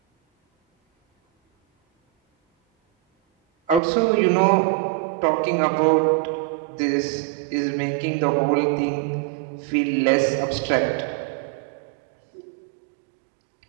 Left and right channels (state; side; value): drops out; left; at 3.8 s